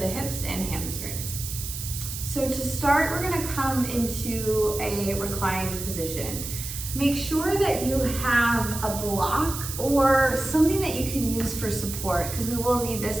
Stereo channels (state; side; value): noise; right; hiss, 7 dB below the sound